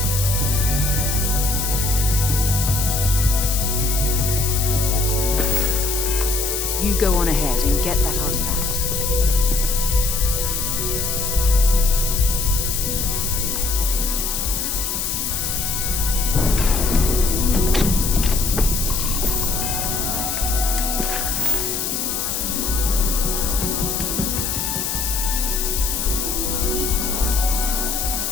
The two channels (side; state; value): left; noise; hiss, 1 dB below the sound